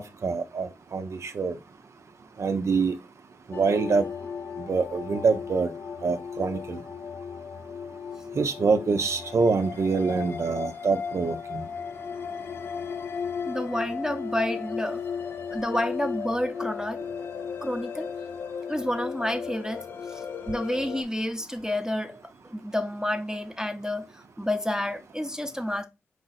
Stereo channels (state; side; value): normal; both; correlation 0.81